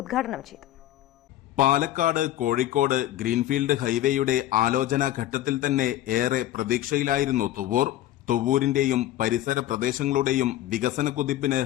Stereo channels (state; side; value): quieter; right; 13.8 dB